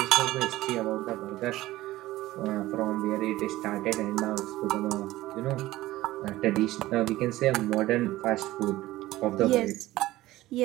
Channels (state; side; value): quieter; left; 16.7 dB